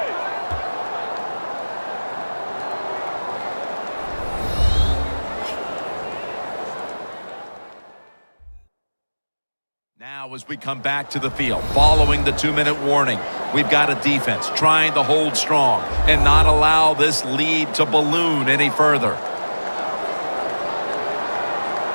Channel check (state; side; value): inverted; both; correlation -1.00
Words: Now as we come back to the field, following the 2-minute warning, we've got a defense trying to hold strong and not allow this lead to balloon any further.